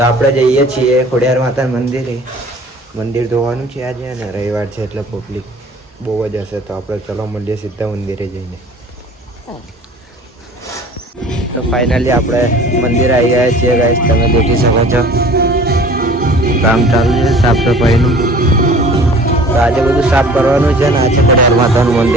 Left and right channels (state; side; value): normal; both; correlation 0.47